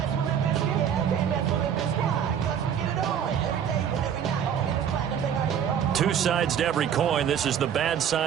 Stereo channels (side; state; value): left; quieter; 8.6 dB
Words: Two sides to every coin. This is the bad